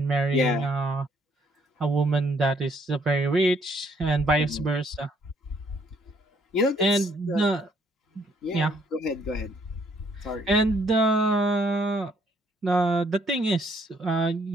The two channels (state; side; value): normal; both; correlation 0.67